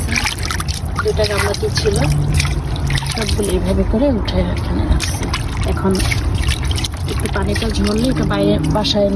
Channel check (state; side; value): identical; both; correlation 1.00